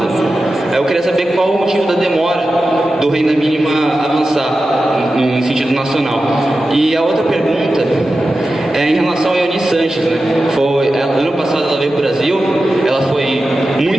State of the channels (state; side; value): normal; both; correlation 0.93